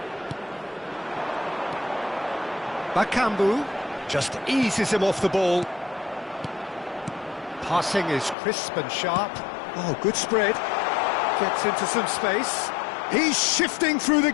Bakambu just eases him off the ball. Passing is crisp and sharp. Oh, good spread. Gets into some space. He's shifting through the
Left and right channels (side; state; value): right; drops out; at 8.3 s